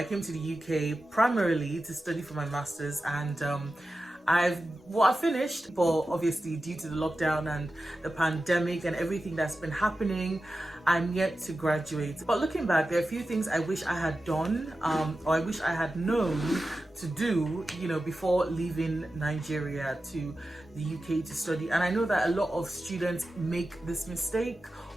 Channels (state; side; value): normal; both; correlation 0.93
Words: came to the UK primarily to study for my masters, and I finished, but obviously due to the lockdown and the pandemic and everything that's been happening, I'm yet to graduate. But looking back, there are a few things I wish I had done or I wish I had known to do, before leaving Nigeria to the UK to study. And I know that a lot of students make this mistake